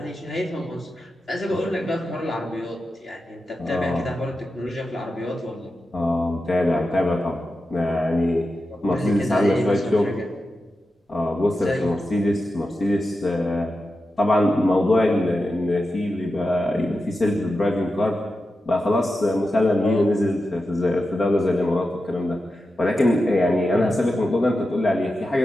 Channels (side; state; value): both; normal; correlation 0.90